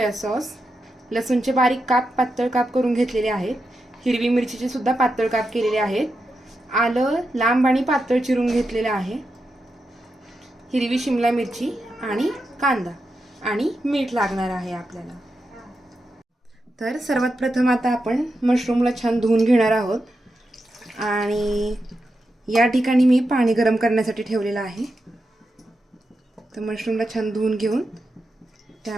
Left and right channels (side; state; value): both; normal; correlation 0.87